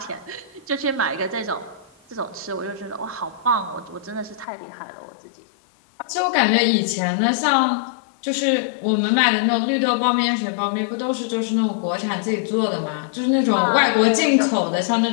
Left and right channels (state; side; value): drops out; right; at 4.5 s